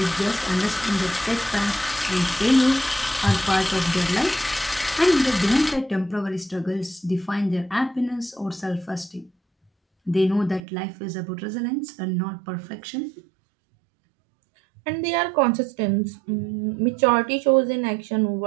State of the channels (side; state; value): left; drops out; at 10.6 s